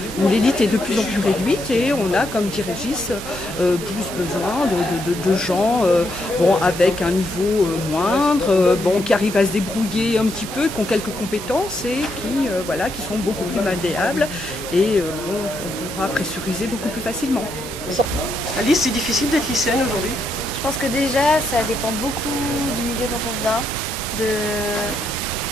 où l'élite est de plus en plus réduite, et on a, comme dit Régis, plus besoin de gens avec un niveau moindre, qui arrivent à se débrouiller un petit peu, qui ont quelques compétences et qui sont beaucoup plus malléables, et on pourra pressuriser beaucoup plus facilement. Alice, c'est difficile d'être lycéenne aujourd'hui? Je pense que déjà, ça dépend beaucoup du milieu dont on vient,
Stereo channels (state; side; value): normal; both; correlation 0.78